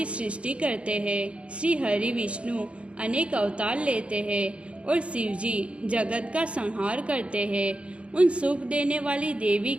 सृष्टि करते हैं, श्री हरि विष्णु अनेक अवतार लेते हैं और शिव जी जगत का संहार करते हैं। उन सुख देने वाली देवी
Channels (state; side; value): late; left; 0.060 ms